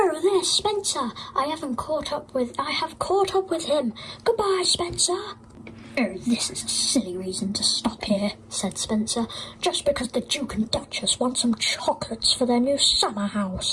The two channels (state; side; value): identical; both; correlation 1.00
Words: there's Spencer. I have caught up with him. Goodbye, Spencer." "Oh, this is a silly reason to stop here," said Spencer. "Just because the Duke and Duchess want some chocolates for their new summer